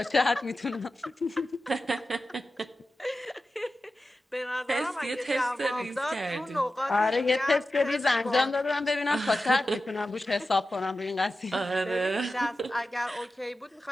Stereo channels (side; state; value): both; normal; correlation 0.93